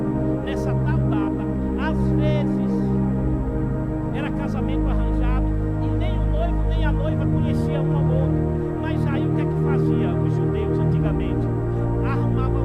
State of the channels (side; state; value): both; identical; correlation 1.00